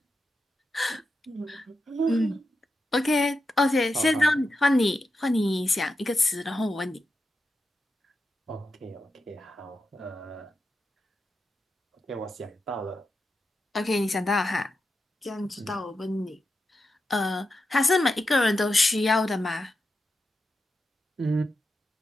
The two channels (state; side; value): normal; both; correlation 0.88